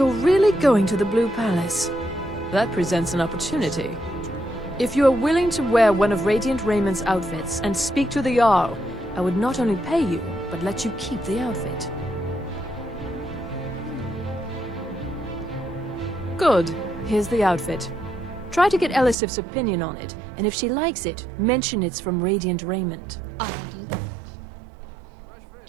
really going to the Blue Palace? That presents an opportunity. If you are willing to wear one of Radiant Raymond's outfits and speak to the Jarl, I would not only pay you, but let you keep the outfit. Good. Here's the outfit. Try to get Elisif's opinion on it, and if she likes it, mention it's from Radiant Raymond. I'll do that.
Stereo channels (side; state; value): left; drops out; at 19.2 s